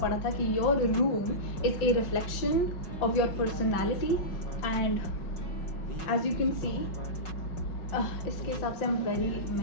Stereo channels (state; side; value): late; right; 5.4 ms